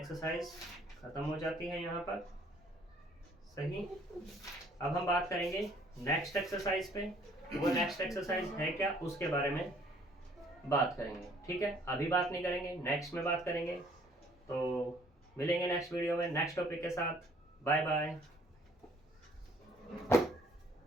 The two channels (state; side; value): normal; both; correlation 0.60